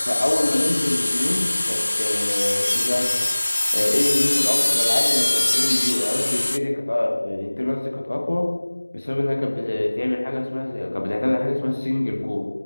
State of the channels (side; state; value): both; inverted; correlation -1.00